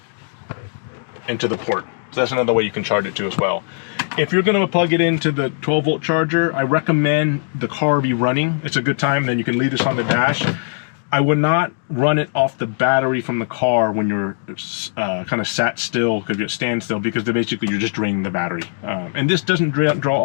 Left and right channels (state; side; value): silent; right; digital silence